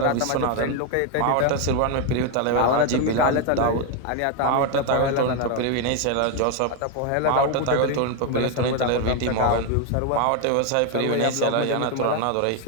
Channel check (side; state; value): both; different; correlation 0.01